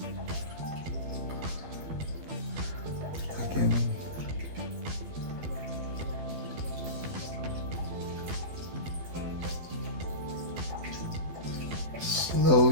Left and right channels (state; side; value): late; left; 12 ms